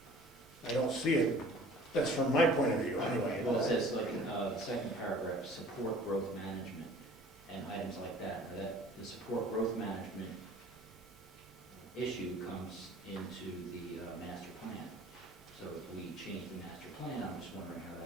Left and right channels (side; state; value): right; noise; hum, 28 dB below the sound